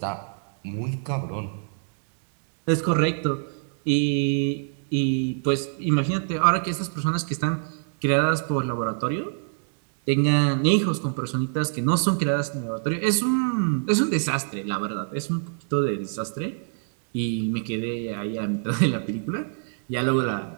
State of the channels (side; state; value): left; silent; digital silence